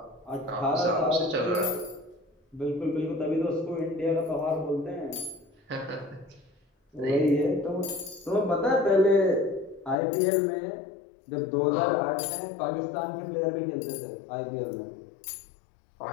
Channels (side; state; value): right; drops out; at 10.0 s